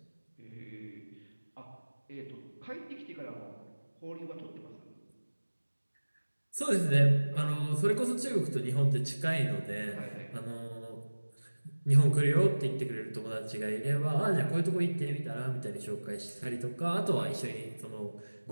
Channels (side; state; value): both; inverted; correlation -1.00